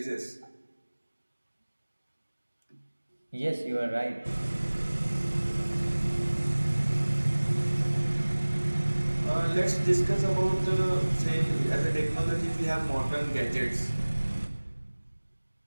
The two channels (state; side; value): inverted; both; correlation -1.00